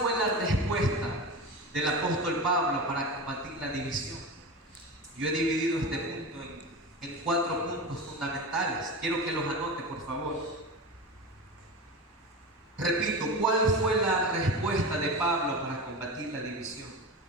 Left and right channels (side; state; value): both; normal; correlation 0.27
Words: la respuesta del apóstol Pablo para combatir la división? Yo he dividido este punto en 4 puntos fundamentales. Quiero que los anote, por favor. Repito, ¿cuál fue la respuesta de Pablo para combatir la división?